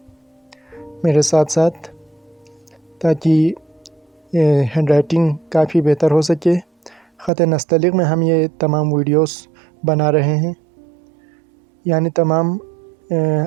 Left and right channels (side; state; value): left; drops out; at 7.3 s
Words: मेरे साथ साथ, ताकि हैंड राइटिंग काफ़ी बेहतर हो सके। ख़त नस्तलीक़ में हम ये तमाम वीडियोस बना रहे हैं, यानी तमाम